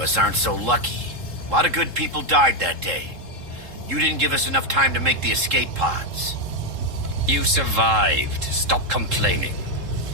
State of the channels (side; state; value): left; late; 3.7 ms